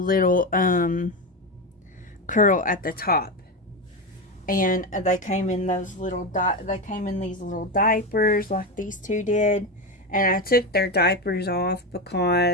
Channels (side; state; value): both; normal; correlation 0.15